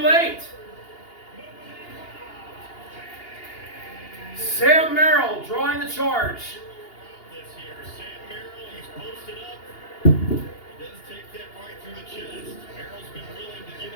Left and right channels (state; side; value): late; right; 2.8 ms